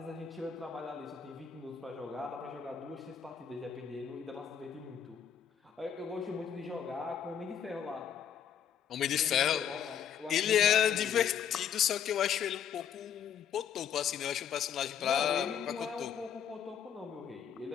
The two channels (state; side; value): quieter; right; 8.6 dB